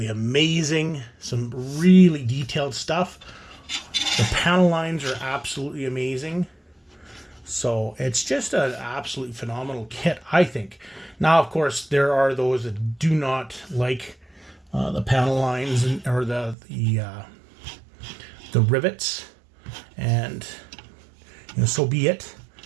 amazing. Some really detailed stuff. The panel lines are absolutely amazing. So it's just an absolutely phenomenal kit, I think. Now, of course, there are those that do not like the panel lines or the rivets, and so be it.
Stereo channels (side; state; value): left; drops out; at 16.6 s